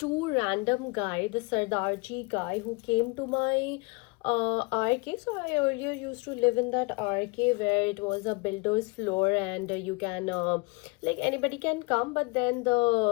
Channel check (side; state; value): right; quieter; 27.3 dB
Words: random guy, the Sardarji guy, who came to my RK. So I earlier used to live in that RK where it was a builder's floor, and you can like anybody can come, but then